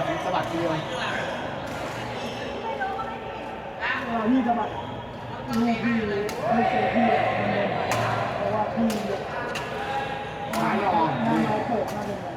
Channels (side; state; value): both; identical; correlation 1.00